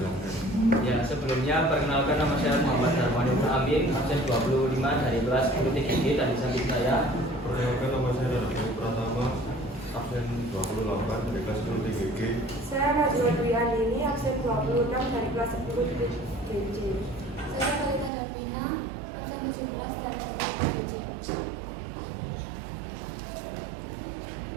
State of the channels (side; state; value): left; drops out; at 18.1 s